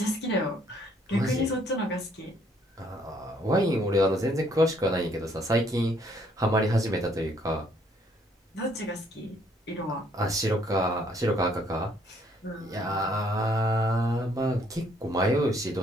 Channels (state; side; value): normal; both; correlation 0.66